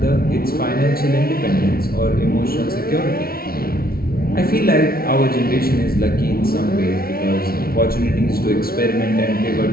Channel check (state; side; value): late; right; 0.44 ms